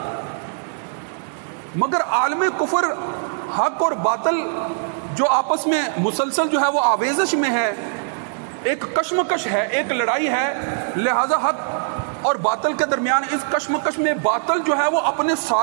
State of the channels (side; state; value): left; silent; digital silence